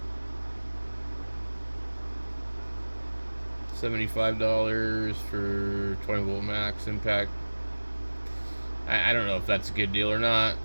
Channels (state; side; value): inverted; both; correlation -1.00